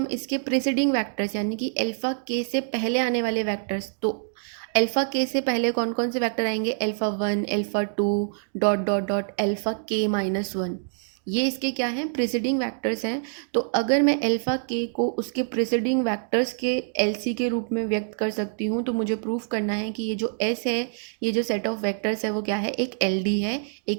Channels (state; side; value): silent; left; digital silence